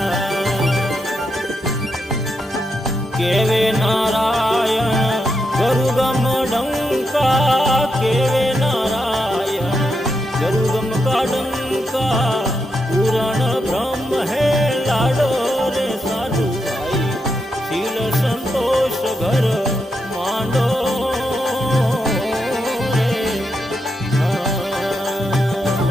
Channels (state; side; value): normal; both; correlation 0.83